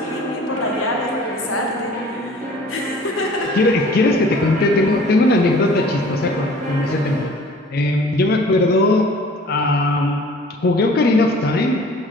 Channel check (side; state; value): both; normal; correlation 0.49